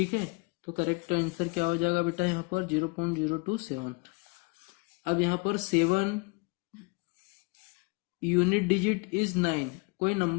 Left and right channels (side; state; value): right; quieter; 29.4 dB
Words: है, तो करेक्ट आंसर क्या हो जाएगा बेटा यहाँ पर 0.027। अब यहाँ पर 7 यूनिट डिजिट इज 9, कोई